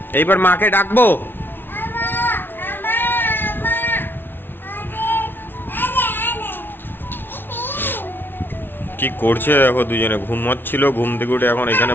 এইবার মাকে ডাকবো। কি করছে দেখো, দুজনে ঘুমাচ্ছিল, ঘুম থেকে উঠে এখন এখানে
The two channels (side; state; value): right; late; 0.10 ms